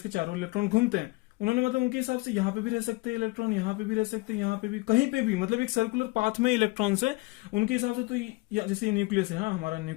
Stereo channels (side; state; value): right; quieter; 24.2 dB